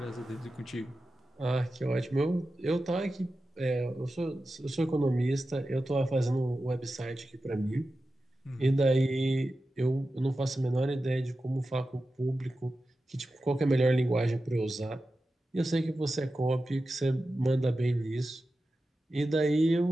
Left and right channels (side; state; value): both; normal; correlation 0.93